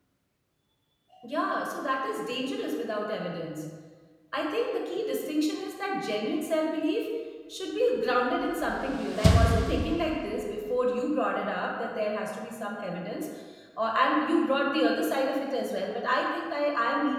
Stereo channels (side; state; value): both; identical; correlation 1.00